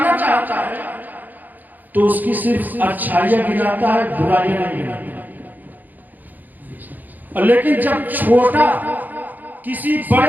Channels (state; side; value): late; left; 0.084 ms